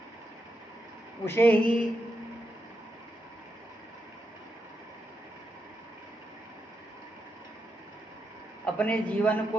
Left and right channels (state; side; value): normal; both; correlation 0.83